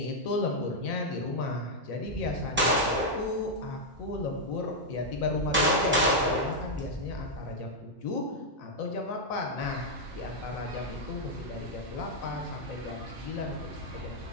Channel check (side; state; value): both; normal; correlation -0.03